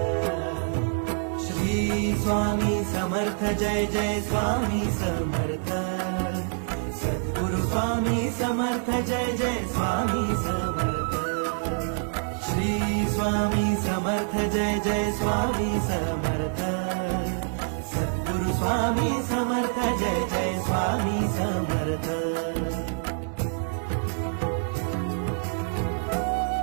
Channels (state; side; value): silent; left; digital silence